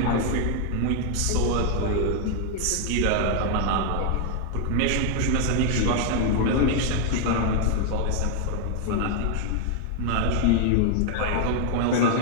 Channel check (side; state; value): both; different; correlation 0.00